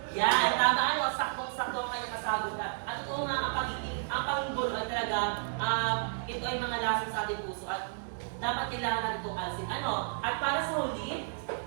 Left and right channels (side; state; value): left; silent; digital silence